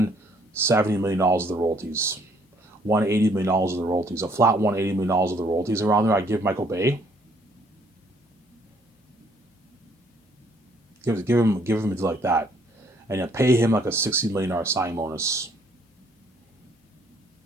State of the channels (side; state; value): both; normal; correlation 0.65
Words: million of the royalties, $180 million of the royalties, a flat $180 million of the royalties around there. I'd give Michael Bay. Give him like that, and then pay him like a $60 million signing bonus.